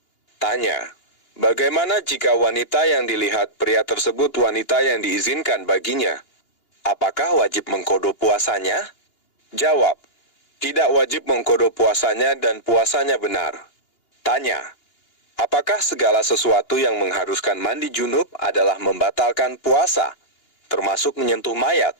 Tanya, bagaimana jika wanita yang dilihat pria tersebut wanita yang diizinkan baginya? Apakah wajib mengkodo puasanya? Jawab, tidak wajib mengkodo puasanya dan puasanya benar. Tanya, apakah segala sesuatu yang mengharuskan mandi junub adalah membatalkan puasa, termasuk menyentuh mayat?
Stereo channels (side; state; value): right; late; 2.9 ms